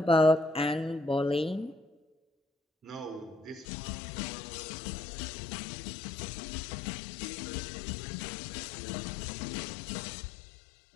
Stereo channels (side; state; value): right; drops out; at 3.7 s